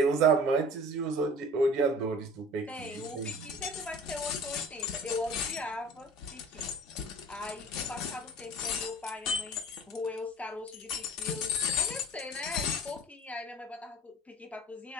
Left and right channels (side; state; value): both; normal; correlation 0.44